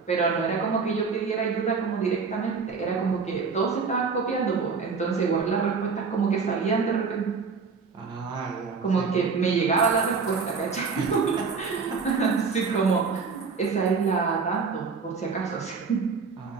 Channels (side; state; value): left; quieter; 5.1 dB